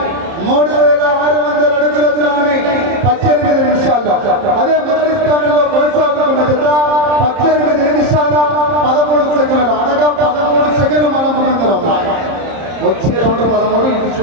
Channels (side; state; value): left; late; 30 ms